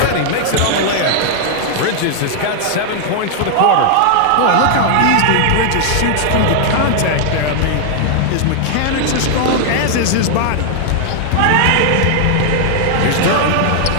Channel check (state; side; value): different; both; correlation -0.01